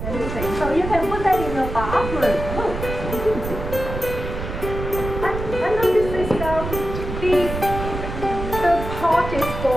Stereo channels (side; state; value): right; noise; rumble, 6 dB below the sound